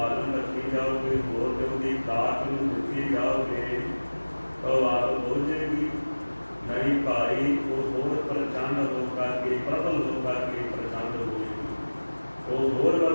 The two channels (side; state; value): both; inverted; correlation -1.00